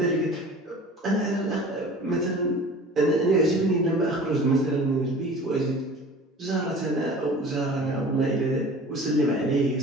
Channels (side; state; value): both; normal; correlation 0.42